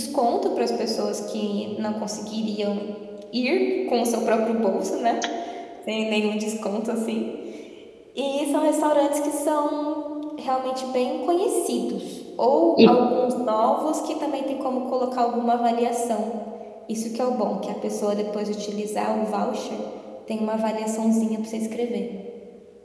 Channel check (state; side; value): identical; both; correlation 1.00